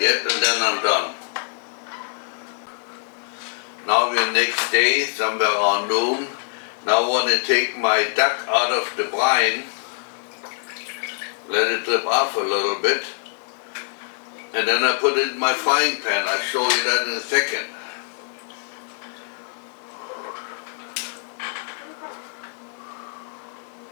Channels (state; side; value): silent; right; digital silence